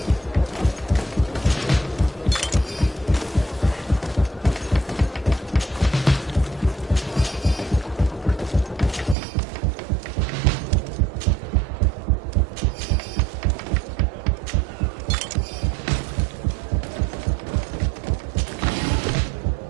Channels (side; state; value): left; drops out; at 9.2 s